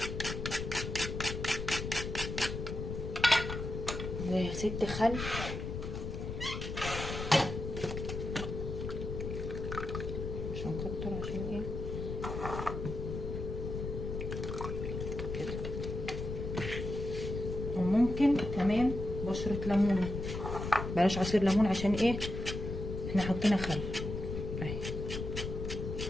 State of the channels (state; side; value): noise; left; rumble, 5 dB below the sound